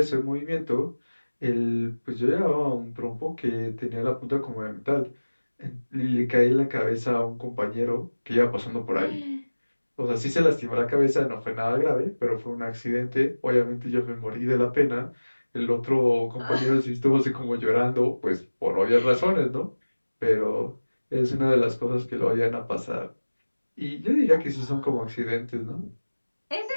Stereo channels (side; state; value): both; inverted; correlation -1.00